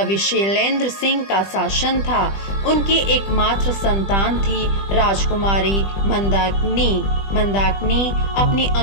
विशैलेंद्र सिंह का शासन था। उनकी एकमात्र संतान थी राजकुमारी मंदाकिनी। मंदाकिनी अपनी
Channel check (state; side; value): late; right; 20 ms